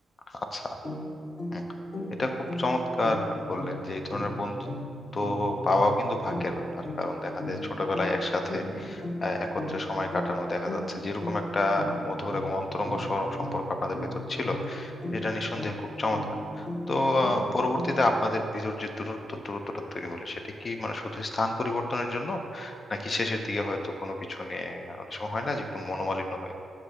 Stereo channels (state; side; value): normal; both; correlation 0.86